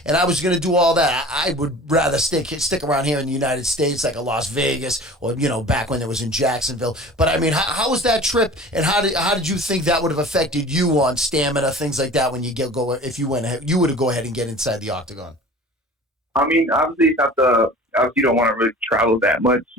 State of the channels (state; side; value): normal; both; correlation 0.42